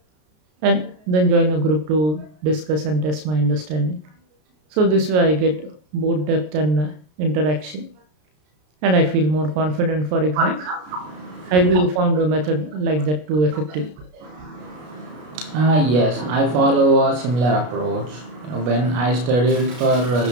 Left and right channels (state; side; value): late; left; 33 ms